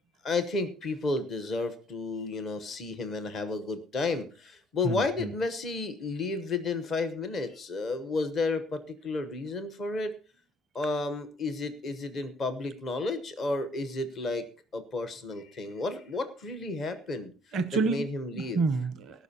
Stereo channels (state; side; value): normal; both; correlation 0.61